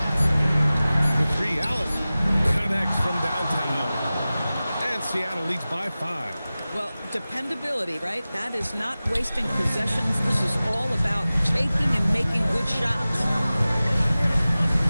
The 3, Allen connects from downtown. And Seattle leads by 5. Well, dependability, right? That is not wasting possessions. This is all about taking and making good shots.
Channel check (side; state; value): both; inverted; correlation -0.97